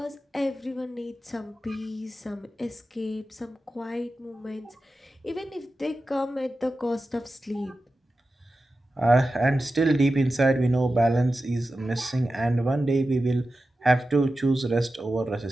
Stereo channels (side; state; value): both; normal; correlation 0.93